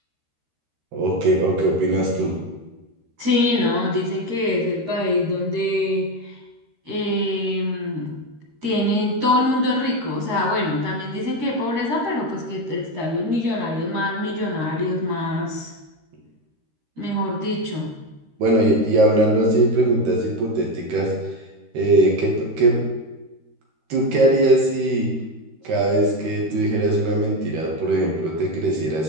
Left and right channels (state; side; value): late; left; 13 ms